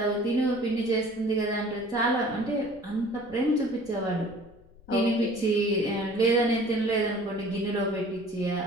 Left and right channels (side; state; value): left; noise; rumble, 26 dB below the sound